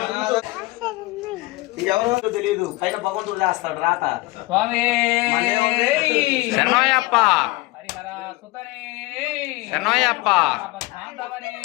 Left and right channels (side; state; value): right; quieter; 21.3 dB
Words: ఎవరో తెలియదు పైన భగవంతుడు చేస్తాడు రాత స్వామి శరణయ్యప్ప హరిహర సుతనే శరణయ్యప్ప బాంధవనే